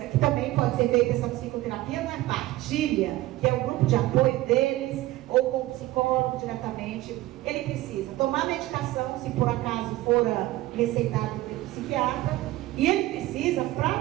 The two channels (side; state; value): left; quieter; 17.1 dB